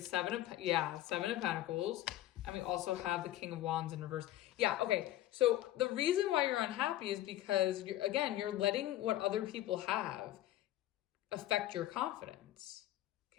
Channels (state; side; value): quieter; right; 14.0 dB